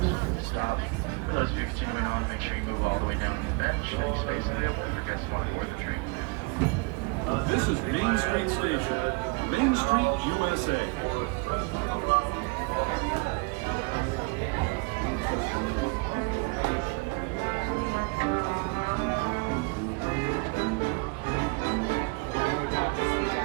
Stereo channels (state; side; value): quieter; left; 29.0 dB